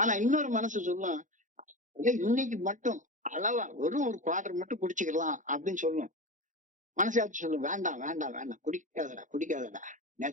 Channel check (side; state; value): left; late; 0.37 ms